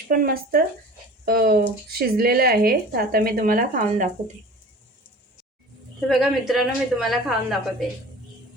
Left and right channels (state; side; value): normal; both; correlation 0.41